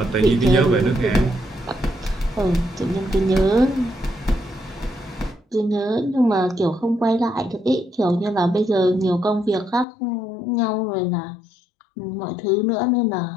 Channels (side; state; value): right; drops out; at 9.9 s